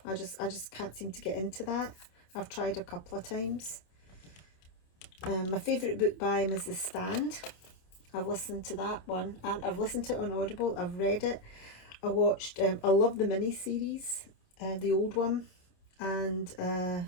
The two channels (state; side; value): late; right; 27 ms